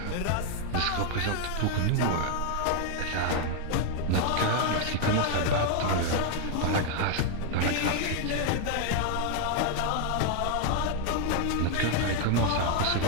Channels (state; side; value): different; both; correlation 0.00